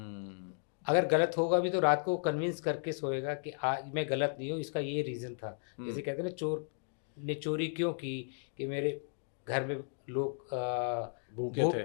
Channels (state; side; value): silent; right; 55 dB below the other